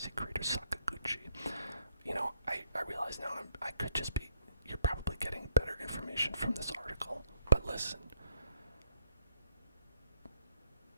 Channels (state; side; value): inverted; both; correlation -0.72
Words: creator Sakaguchi. You know, I realize now I could just be, you're probably getting better information from this article, but listen.